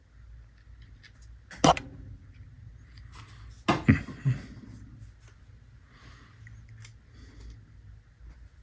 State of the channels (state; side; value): identical; both; correlation 1.00